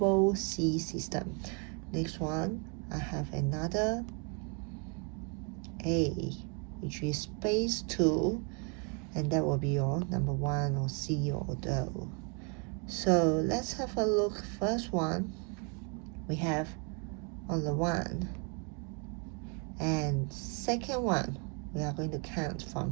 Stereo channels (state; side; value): quieter; left; 36.2 dB